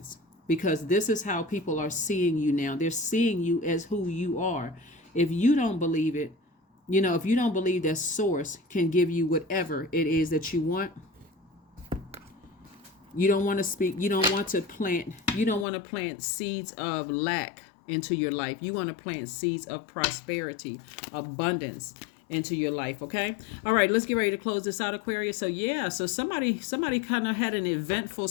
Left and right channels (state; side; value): drops out; right; at 15.7 s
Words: because this is how people are seeing you now. They're seeing you as who you are. If you don't believe it, if you don't believe that source can give you whatever it is that you want, you don't want to speak, you don't want to plant seeds of lack into your life. You want to plant seeds of prosperity, abundance into your life. Okay. All right, let's get ready to close this out, Aquarius. So somebody kind of had an eventful